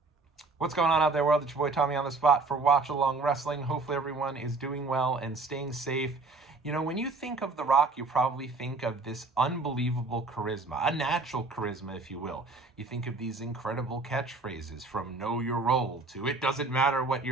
What's going on out there, world? It's your boy Tommy on the spot for Watch Along Wrestling. Hopefully everyone is doing well and staying safe. You know, when you think of The Rock, you probably think of this unbelievable charisma, a natural charisma, if you will. You think of these incredible catchphrases from know your role to it doesn't matter what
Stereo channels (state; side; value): quieter; left; 3.7 dB